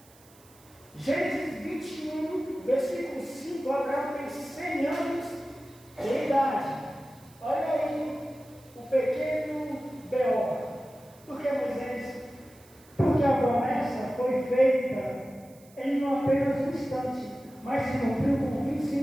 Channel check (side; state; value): right; noise; hiss, 27 dB below the sound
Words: Gênesis 21, versículo 5, Abraão tem 100 anos de idade. Olha aí o pequeno B.O. Por que, Moisés? Porque a promessa foi feita em apenas um instante, mas se cumpriu com